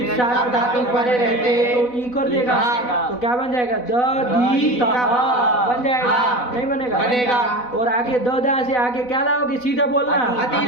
हाँ, सात धातु परे रहते। तो ई कर देगा हाँ। तो क्या बन जाएगा द दी त बन जाएगा हाँ। नहीं बनेगा बनेगा। और आगे द दा से आगे क्या लाओगे सीधा बोलना अति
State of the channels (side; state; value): right; late; 4.0 ms